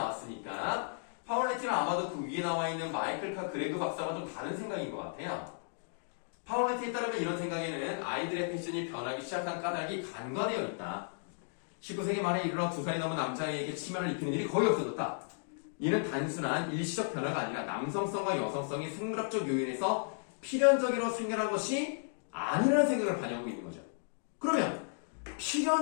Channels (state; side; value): silent; right; digital silence